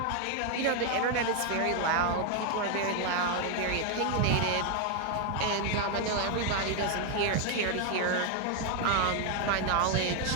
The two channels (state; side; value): different; both; correlation 0.00